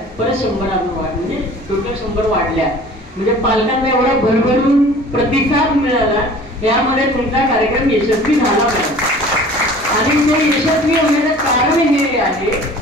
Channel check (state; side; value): normal; both; correlation 0.46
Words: परत 100 अजून वाढ, म्हणजे टोटल 100 वाढल्या. म्हणजे पालकांना एवढा भरभरून प्रतिसाद मिळाला, यामध्ये तुमचा कार्यक्रम यशस्वी झाला पाहिजे. आणि ते यशस्वी होण्याचं कारण हे आहे